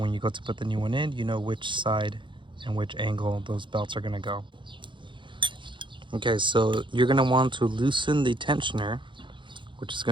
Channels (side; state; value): left; late; 0.23 ms